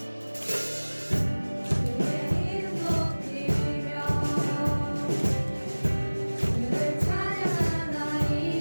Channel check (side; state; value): both; inverted; correlation -1.00